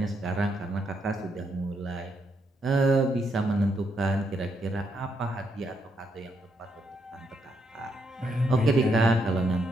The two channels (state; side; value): normal; both; correlation 0.77